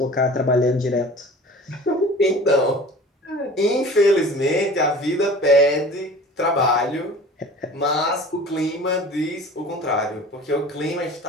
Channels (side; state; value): both; normal; correlation 0.42